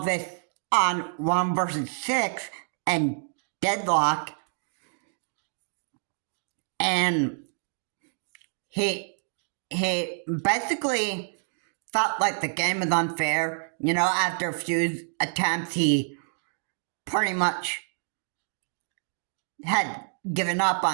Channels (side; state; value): left; silent; digital silence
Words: this on 1 versus 6 and Deadlock, and he basically felt like the game was unfair. After a few attempts, he pretty much had given up